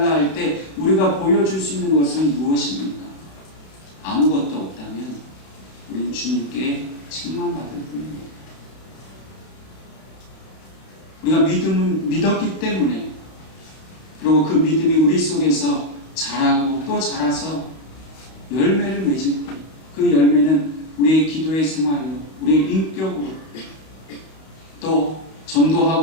할 때 우리가 보여줄 수 있는 것은 무엇입니까? 아무것도 없다면 우리는 주님께 책망받을 뿐입니다. 우리가 믿었기 때문에, 그리고 그 믿음이 우리 속에서 자라고 또 자라서 열매를 맺을 때 그 열매는 우리의 기도의 생활로, 우리의 인격으로, 또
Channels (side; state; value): right; late; 31 ms